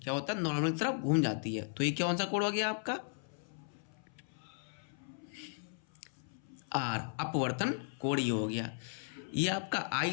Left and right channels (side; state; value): right; silent; 54 dB below the other